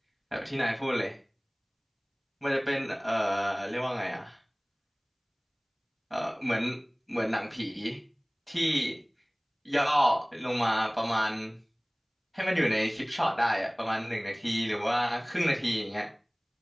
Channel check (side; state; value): both; identical; correlation 1.00